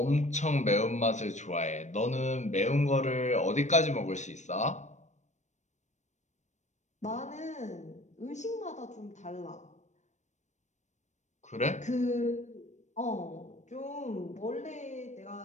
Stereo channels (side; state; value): right; late; 0.34 ms